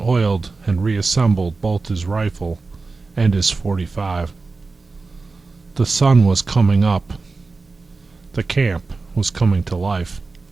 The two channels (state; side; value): quieter; left; 3.9 dB